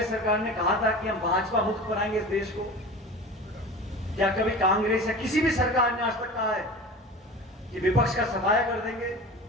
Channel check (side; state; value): both; normal; correlation 0.35